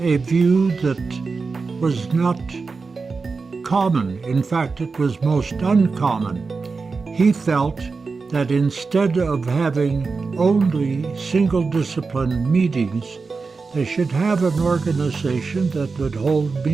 view that was not common. In fact, it was most uncommon. He felt that instead of having only single-discipline meetings, they should have an organization that would hold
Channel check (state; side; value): quieter; left; 4.5 dB